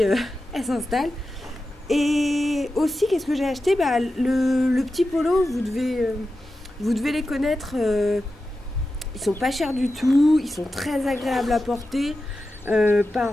elle s'installe. Et aussi, qu'est-ce que j'ai acheté? Bah, le petit polo, vous devez les connaître. Ils sont pas chers du tout, ils sont très agréables à porter.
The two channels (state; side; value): normal; both; correlation 0.92